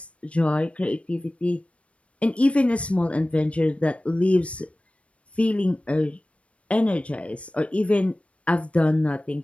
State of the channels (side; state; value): right; late; 0.062 ms